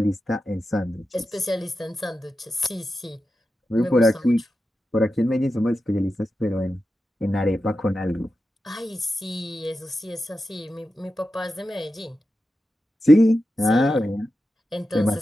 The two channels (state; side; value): normal; both; correlation 0.91